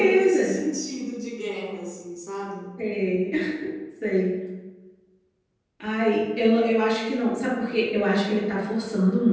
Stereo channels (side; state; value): both; identical; correlation 1.00